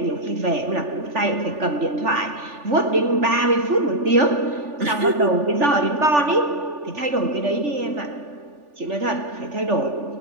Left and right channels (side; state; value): left; late; 3.4 ms